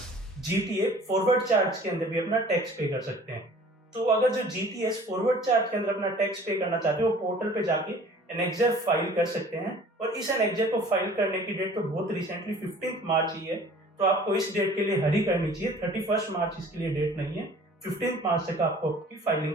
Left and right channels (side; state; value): both; normal; correlation 0.49